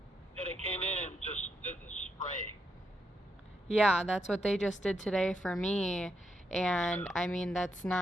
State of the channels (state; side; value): normal; both; correlation 0.81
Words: Yeah, they came in and just did the spray. Yeah, that's what they just did today for me. And Yeah. I mean, that's